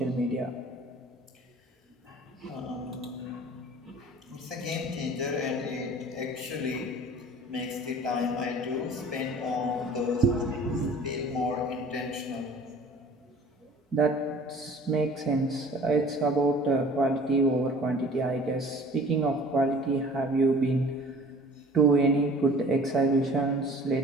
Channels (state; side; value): normal; both; correlation 0.47